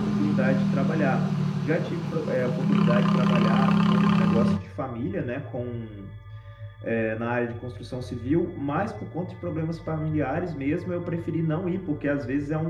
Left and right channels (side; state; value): both; identical; correlation 1.00